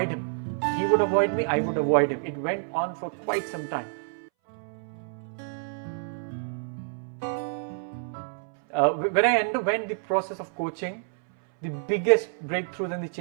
him. He would avoid me, I would avoid him. It went on for quite some time. When I underwent the process of coaching, the biggest breakthroughs and the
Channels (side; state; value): left; silent; 59 dB below the other